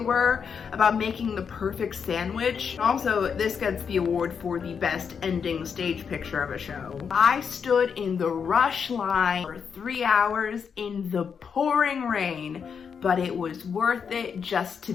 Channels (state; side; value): quieter; right; 6.6 dB